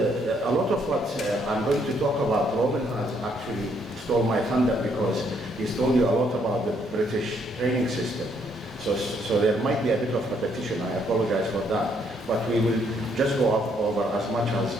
lot of what I'm going to talk about. Robin has actually stole my thunder because he's told you a lot about the British training system. So there might be a bit of repetition. I apologize for that. But we will just go over as much as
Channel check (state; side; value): normal; both; correlation 0.70